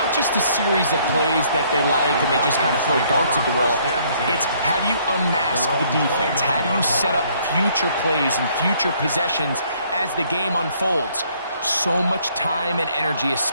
just a series of plays that they like and they just kind of throw darts at the wall. It's how do you unmask the defense? How do you set up future plays and future possessions as the game unfolds? So much time and energy is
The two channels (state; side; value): inverted; both; correlation -0.64